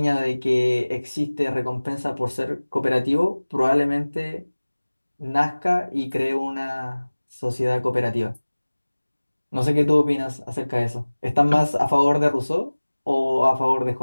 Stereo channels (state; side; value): inverted; both; correlation -1.00